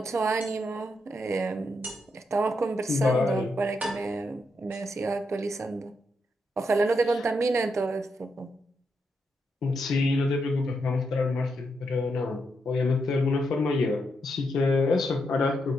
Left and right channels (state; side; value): normal; both; correlation 0.82